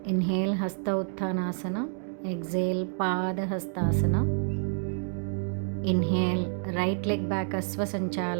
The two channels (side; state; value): left; silent; 59 dB below the other